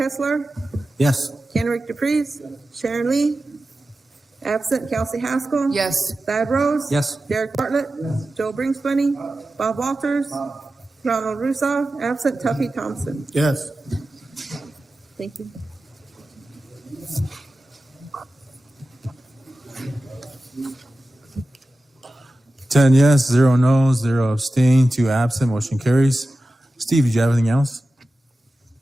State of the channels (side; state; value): both; normal; correlation 0.94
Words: Yes. Kenrick DePreez, Sharon Lee, absent Kelsey Haskell. Yes. Thad Rose. Yes. Derek Bartlett. Joe Bringsbunny. Bob Walters. Ronald Russo, absent Tuffy Thompson. Yes. Thank you. Ten yes, 0 no, 0 abstain, 2 absent, motion carries. Steve, did you have anything else?